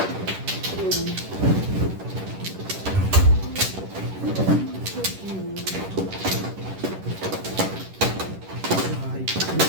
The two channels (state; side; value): late; left; 10 ms